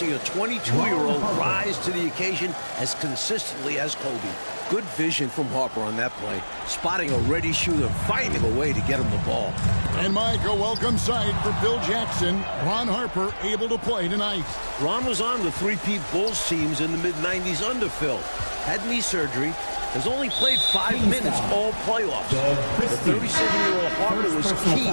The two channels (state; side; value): inverted; both; correlation -1.00